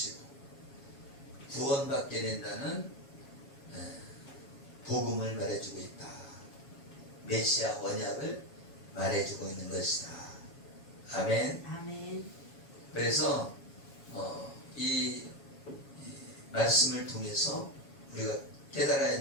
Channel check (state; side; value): late; right; 7.2 ms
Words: 구원받게 된다는 복음을 말해주고 있다. 메시아 언약을 말해주고 있는 것이다. 아멘. 아멘. 그래서 이 말씀을 통해서 우리가 깨달아야